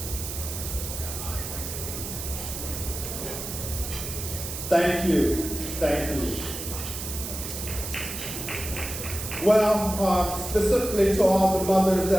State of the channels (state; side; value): noise; right; hiss, 7 dB below the sound